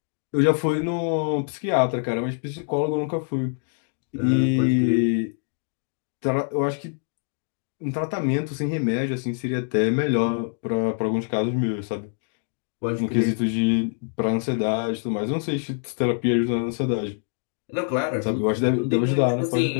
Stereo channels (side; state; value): right; silent; digital silence